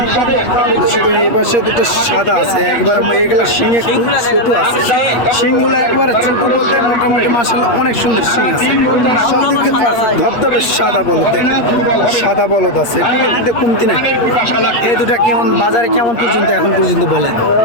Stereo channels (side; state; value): right; late; 8.5 ms